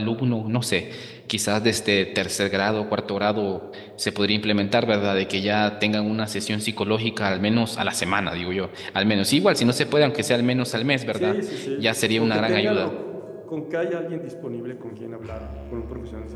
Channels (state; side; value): identical; both; correlation 1.00